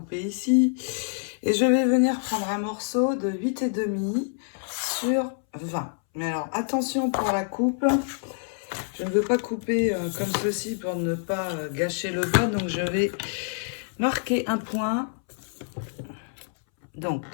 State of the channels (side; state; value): right; silent; 60 dB below the other